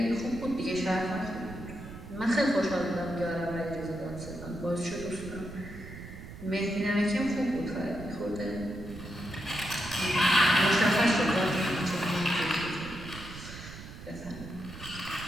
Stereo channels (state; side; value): noise; right; rumble, 13 dB below the sound